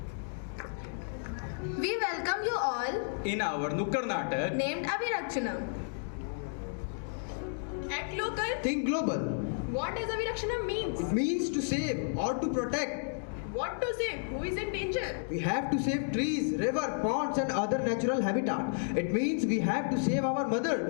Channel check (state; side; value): silent; right; digital silence